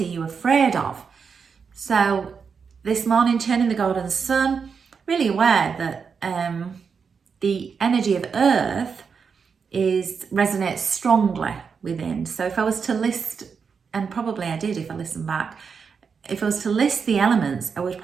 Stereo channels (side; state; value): left; quieter; 5.9 dB